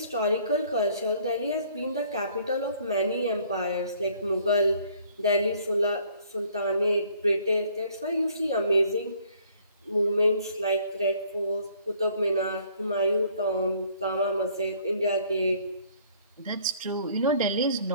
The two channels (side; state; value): both; inverted; correlation -0.60